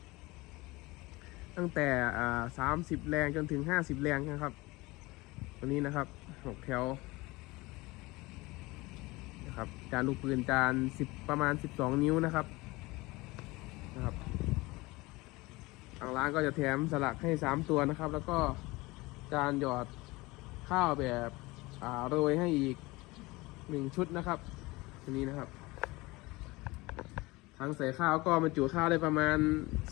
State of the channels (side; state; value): right; quieter; 22.2 dB